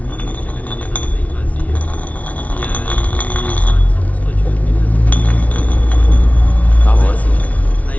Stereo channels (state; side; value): late; right; 0.069 ms